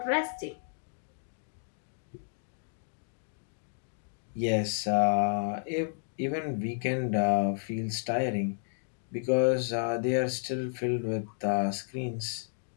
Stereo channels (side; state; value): right; silent; digital silence